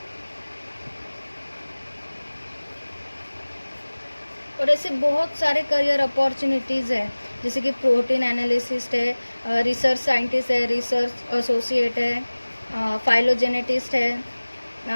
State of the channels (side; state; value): both; inverted; correlation -1.00